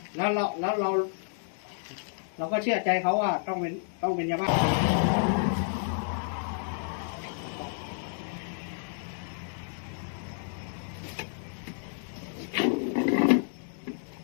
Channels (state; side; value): silent; right; 57 dB below the other